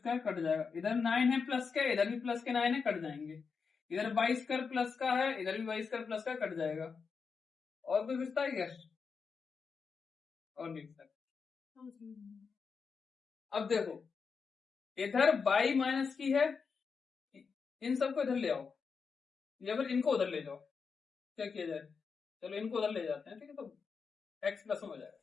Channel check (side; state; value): right; quieter; 5.5 dB